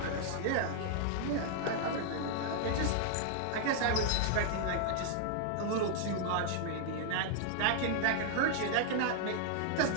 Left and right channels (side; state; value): both; different; correlation -0.01